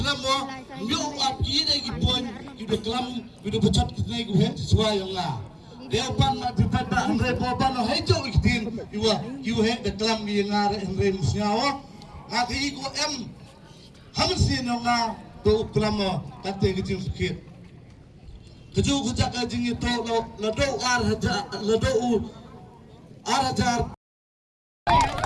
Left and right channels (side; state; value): both; identical; correlation 1.00